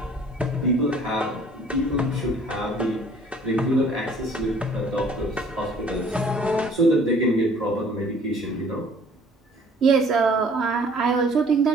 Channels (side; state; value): both; normal; correlation 0.55